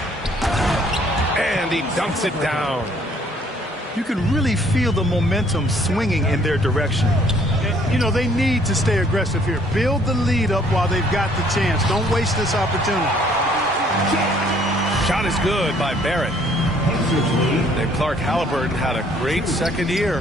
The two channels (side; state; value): both; normal; correlation 0.61